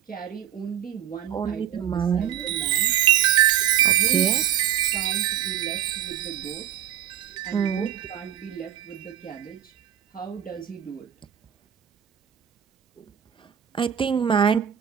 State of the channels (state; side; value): quieter; left; 10.2 dB